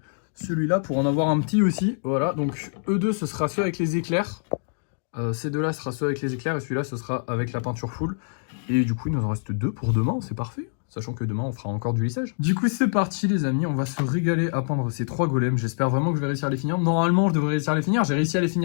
celui-là pour en avoir un petit aussi. Voilà, donc eux deux, ce sera ceux avec les éclairs. Ces deux-là, ce sera ceux avec les éclairs. Et celui-là, ce sera avec la peinture full. Et du coup, il nous en reste 2 pour demain. C'est parfait. Sachant que demain, on fera encore du lissage. Du coup, c'est parti, les amis. On va se régaler à peindre ces 3 golems. J'espère vraiment que je vais réussir à les finir. Normalement, je devrais réussir à les finir. J'ai réussi à les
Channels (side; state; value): right; silent; digital silence